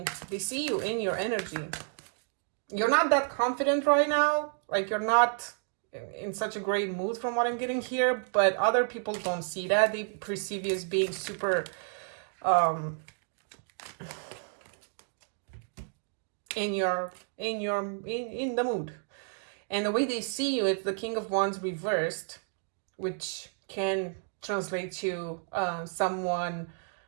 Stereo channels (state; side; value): silent; left; 57 dB below the other